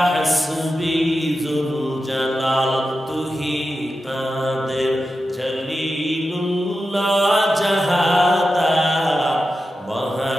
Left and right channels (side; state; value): both; normal; correlation 0.91